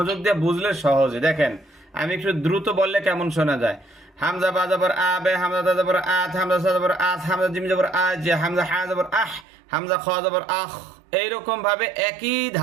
দিয়ে বুঝলে সহজে। দেখেন, আমি একটু দ্রুত বললে কেমন শোনা যায়। হামজা বা জবর আবে, হামজা দা জবর আত, হামজা সা জবর আস, হামজা জিম জবর আজ, হামজা হা জবর আহ, হামজা খ জবর আখ। এইরকম ভাবে একই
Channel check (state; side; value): drops out; left; at 9.5 s